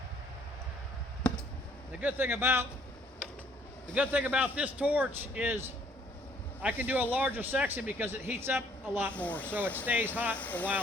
The good thing about this torch is I can do a larger section because it heats up a lot more, so it stays hot a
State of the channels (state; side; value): normal; both; correlation 0.63